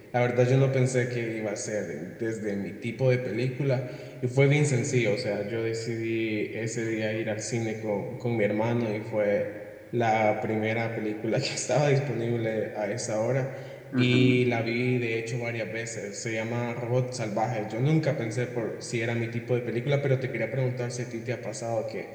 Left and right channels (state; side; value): identical; both; correlation 1.00